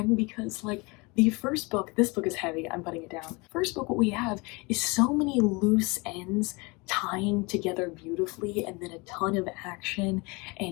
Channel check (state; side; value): quieter; right; 27.1 dB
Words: because like the first book, this book is heavy, I'm putting it down. First book, what we have is so many loose ends tying together beautifully, and then a ton of action